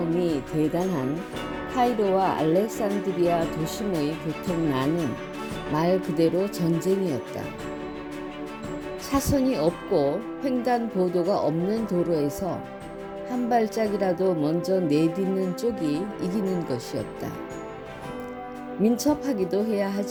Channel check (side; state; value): both; identical; correlation 1.00